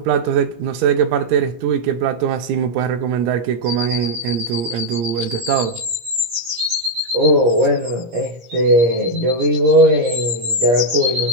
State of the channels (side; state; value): left; late; 17 ms